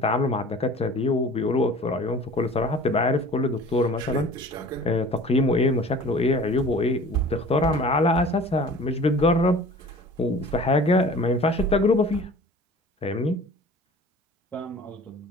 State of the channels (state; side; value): normal; both; correlation 0.44